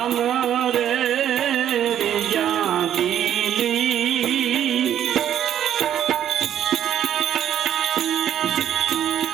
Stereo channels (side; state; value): left; quieter; 10.4 dB